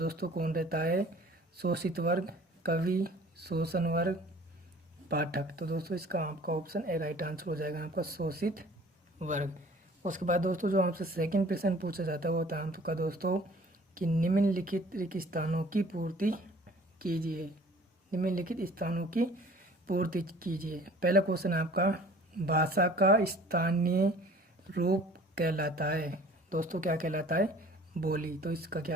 कौन रहता है? शोषित वर्ग, कवि, शोषण वर्ग, पाठक? तो दोस्तों इसका आपका ऑप्शन ए राइट आंसर हो जाएगा आपका शोषित वर्ग। उसके बाद दोस्तों जो आपसे सेकंड प्रश्न पूछा जाता है वो होता है आपका दोस्तों कि निम्नलिखित रिक्त स्थानों की पूर्ति कीजिए। निम्नलिखित स्थानों की पूर्ति कीजिए। पहला क्वेश्चन आपका, भाषा का स्थानीय रूप कहलाता है? दोस्तों क्या कहलाता है? बोली। तो इसका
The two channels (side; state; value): both; normal; correlation 0.50